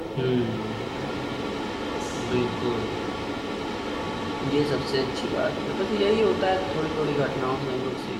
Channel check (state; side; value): identical; both; correlation 1.00